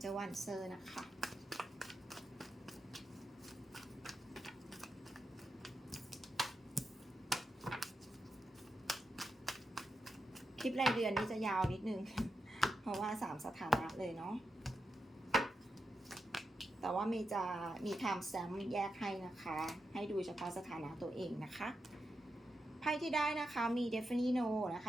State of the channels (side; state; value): both; normal; correlation 0.87